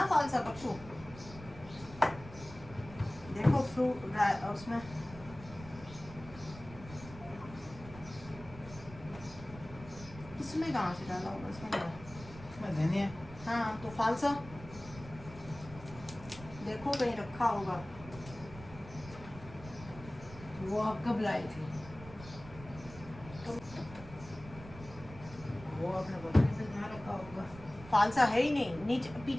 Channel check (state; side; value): noise; right; rumble, 16 dB below the sound